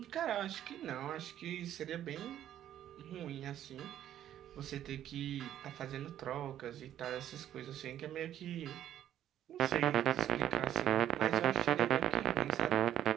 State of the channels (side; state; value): left; quieter; 11.3 dB